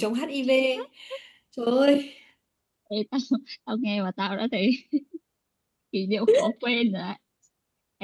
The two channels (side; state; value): both; identical; correlation 1.00